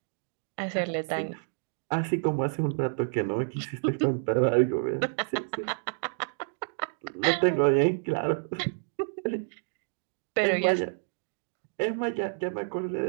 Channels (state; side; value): silent; left; digital silence